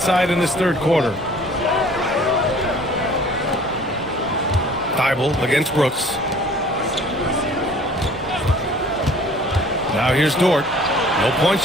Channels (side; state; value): both; normal; correlation 0.51